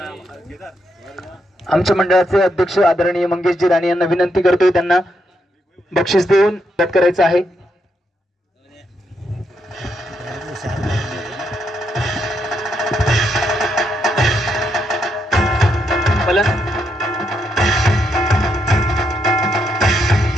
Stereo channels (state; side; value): normal; both; correlation 0.79